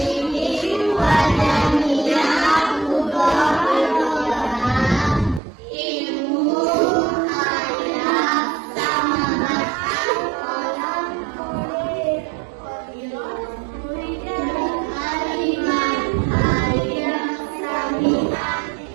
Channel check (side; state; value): left; drops out; at 5.4 s